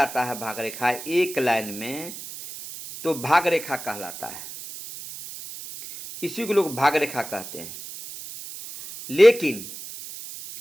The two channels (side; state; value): right; noise; hiss, 11 dB below the sound